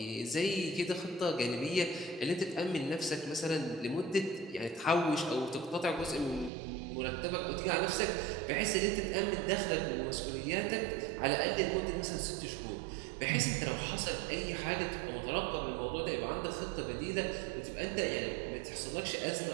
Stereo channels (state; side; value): drops out; left; at 6.5 s